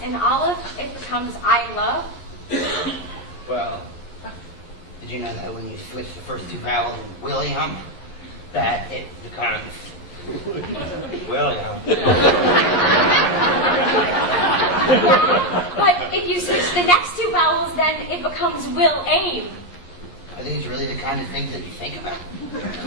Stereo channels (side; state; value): right; late; 11 ms